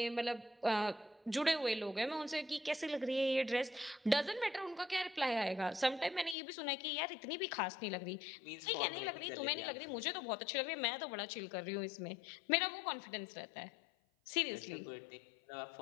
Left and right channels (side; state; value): right; drops out; at 6.4 s